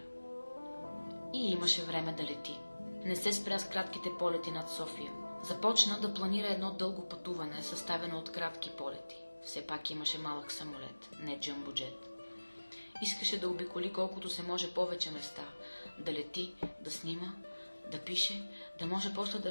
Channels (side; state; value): both; inverted; correlation -1.00